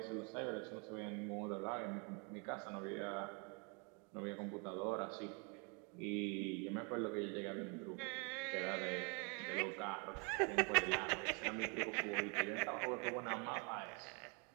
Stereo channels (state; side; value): quieter; left; 34.0 dB